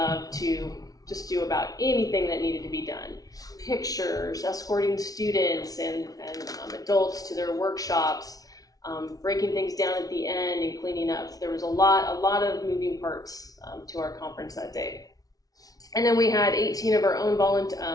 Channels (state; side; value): late; right; 0.18 ms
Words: to just do about anything that needed to be done. Pictures, escorting students and adults to their workshops, breaking things down at the end and cleaning up. There was a lot of moving parts to our conference that day. And then we had 18 of our own